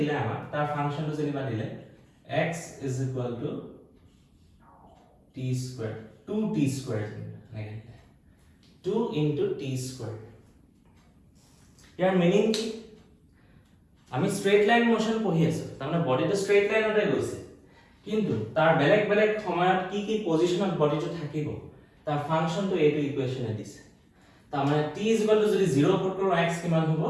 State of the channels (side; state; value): both; identical; correlation 1.00